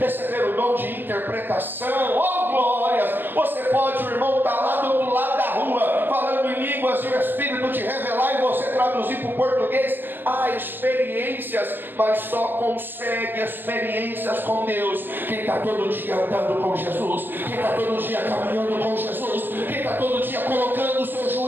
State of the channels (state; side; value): late; left; 0.095 ms